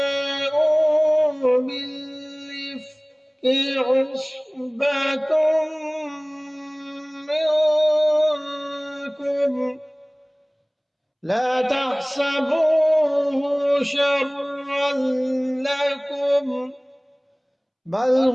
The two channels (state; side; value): identical; both; correlation 1.00